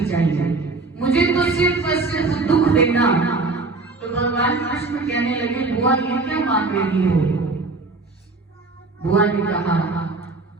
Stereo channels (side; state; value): left; quieter; 3.6 dB